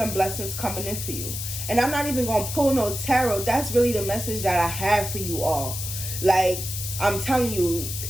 blessings coming in for you. And I'm not even gonna pull no tarot. That's really the message that I have for you all. Like, I'm telling you,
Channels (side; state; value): left; noise; hiss, 6 dB below the sound